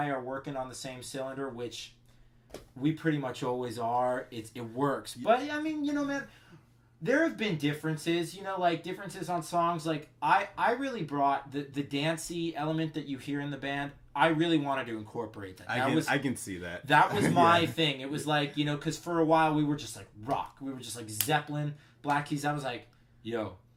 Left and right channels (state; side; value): identical; both; correlation 1.00